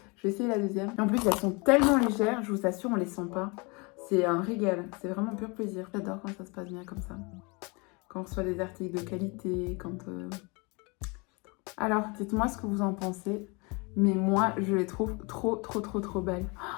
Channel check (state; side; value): quieter; right; 29.2 dB